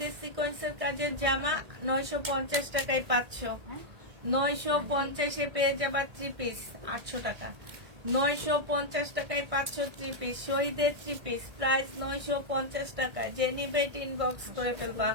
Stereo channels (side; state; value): left; late; 1.8 ms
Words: সিকোয়েন্সের কাজের জামা 950 টাকায় পাচ্ছ। 950 পেয়ে যাবা 3 পিস 800 টাকা। 950 টাকায় পাচ্ছ 3 পিস। শহীদের 3 পিস প্রাইস 950 টাকা। যে নিবে এটা ইনবক্স করে ফেলবা।